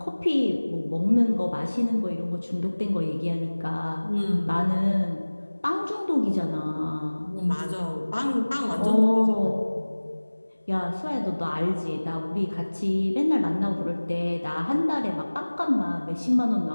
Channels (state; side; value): inverted; both; correlation -1.00